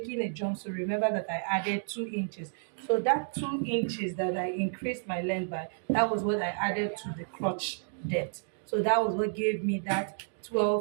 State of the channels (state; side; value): silent; left; digital silence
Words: a jumpsuit, remember that I added 2 inches. So that 2 inches that I increased my length by, that was what I added to the crotch depth. So that was what gave me that